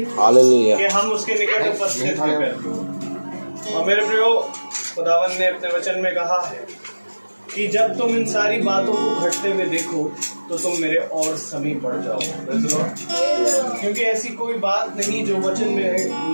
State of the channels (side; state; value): both; inverted; correlation -1.00